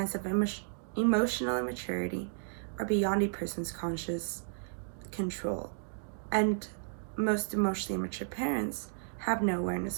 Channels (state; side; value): silent; left; digital silence